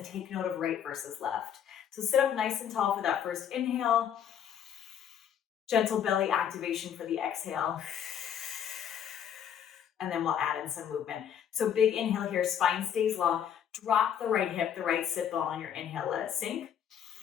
take note of right versus left. So sit up nice and tall for that first inhale. Gentle belly activation for the exhale. And then we'll add in some movement. So big inhale here, spine stays long. Drop the right hip, the right sit bone on your inhale, let it sink.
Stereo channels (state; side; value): quieter; right; 8.9 dB